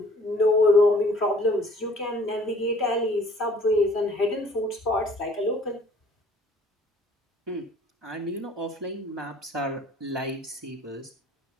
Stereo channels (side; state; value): both; normal; correlation 0.55